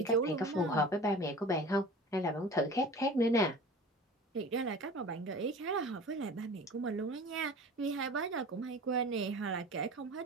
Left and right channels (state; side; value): normal; both; correlation 0.39